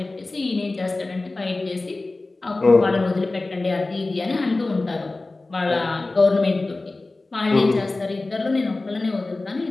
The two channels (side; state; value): right; quieter; 3.2 dB